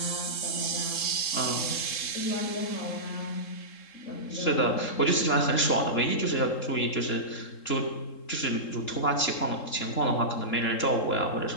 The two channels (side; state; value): right; late; 3.7 ms